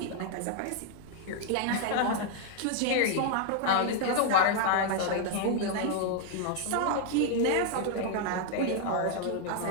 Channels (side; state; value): both; different; correlation 0.00